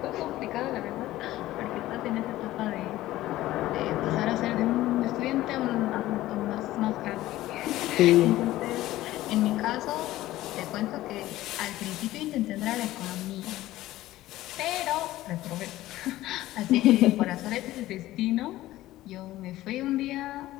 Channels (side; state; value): right; quieter; 15.8 dB